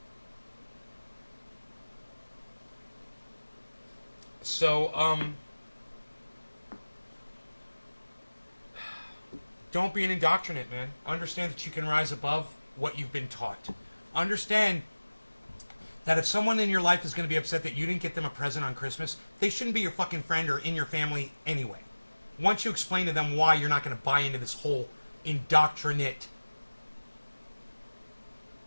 So, don't be an indoctrinate, man. Understand that you can rise above what you've been taught. Understand that if someone in your life is going to be upset that you didn't get them a present on Christmas, they shouldn't be your fucking friend or in your family anyway. Once you explain to them why you're not going to buy into this whole indoctrinated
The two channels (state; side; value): inverted; both; correlation -1.00